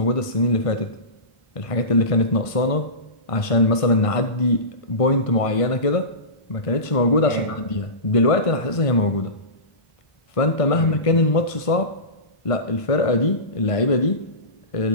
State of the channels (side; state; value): right; late; 1.5 ms